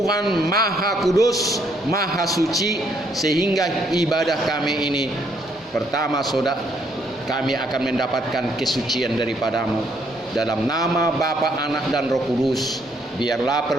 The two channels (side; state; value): both; normal; correlation 0.70